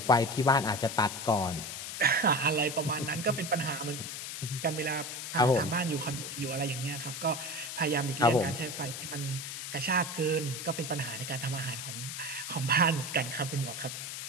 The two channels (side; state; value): left; noise; hiss, 7 dB below the sound